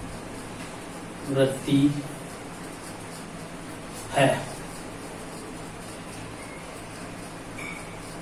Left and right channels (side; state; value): both; identical; correlation 1.00